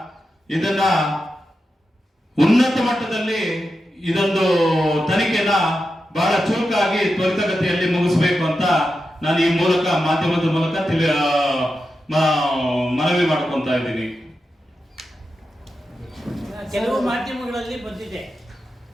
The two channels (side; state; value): both; normal; correlation 0.89